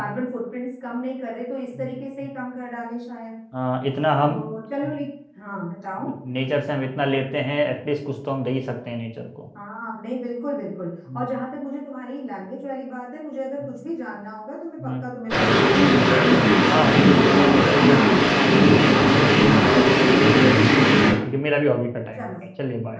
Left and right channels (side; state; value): both; identical; correlation 1.00